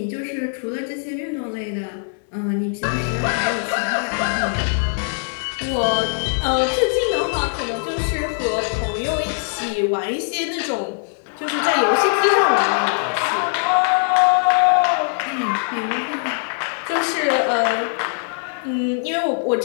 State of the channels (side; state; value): right; silent; 62 dB below the other